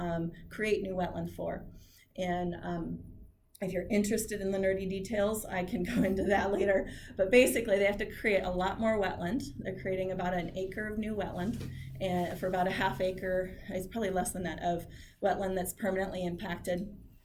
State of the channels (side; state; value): both; identical; correlation 1.00